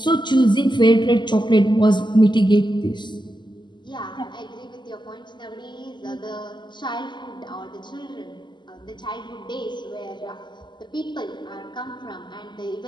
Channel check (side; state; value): right; late; 0.22 ms